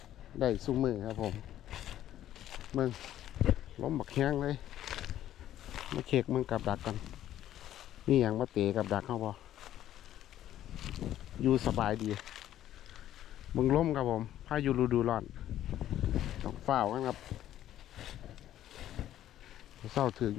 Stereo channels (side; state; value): right; quieter; 12.2 dB